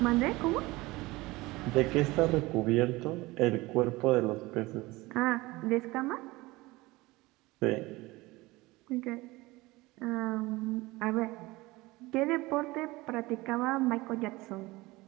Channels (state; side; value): quieter; left; 21.0 dB